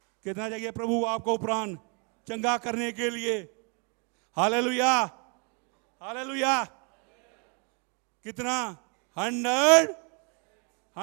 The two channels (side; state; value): left; quieter; 36.1 dB